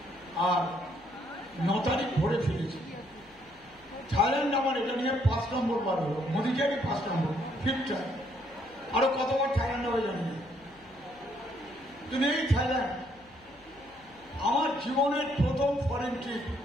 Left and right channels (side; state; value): left; noise; hum, 29 dB below the sound